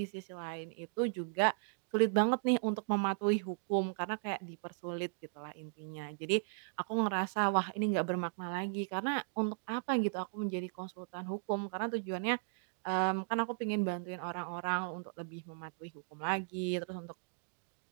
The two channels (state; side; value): silent; left; digital silence